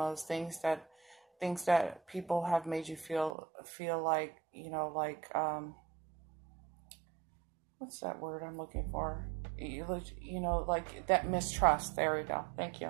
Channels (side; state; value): left; drops out; at 3.4 s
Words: things that people have made you feel like, you know, like, what's that word I'm looking for? You know, like that mistrust. There we go. Thank